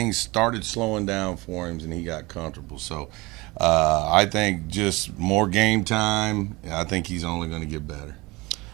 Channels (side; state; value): left; quieter; 23.1 dB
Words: started slowing down for him and he got comfortable. So I think just more game time. I think he's only going to get better.